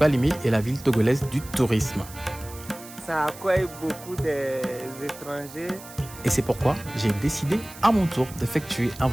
est la ville togolaise du tourisme. Ça accueille beaucoup d'étrangers. Et c'est pourquoi j'ai décidé à mon tour d'effectuer un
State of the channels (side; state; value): right; noise; hiss, 17 dB below the sound